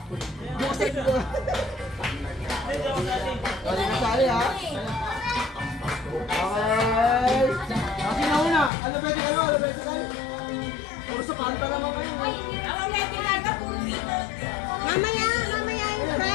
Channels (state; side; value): drops out; right; at 8.7 s